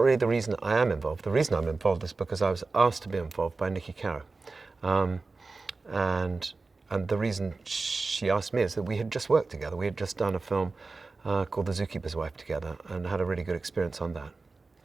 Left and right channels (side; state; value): left; quieter; 3.9 dB